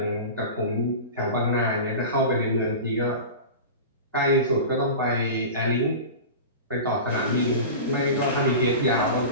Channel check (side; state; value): both; inverted; correlation -0.31